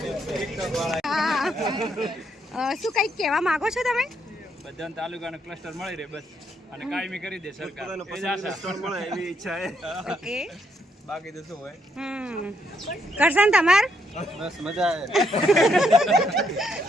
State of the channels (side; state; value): both; normal; correlation 0.74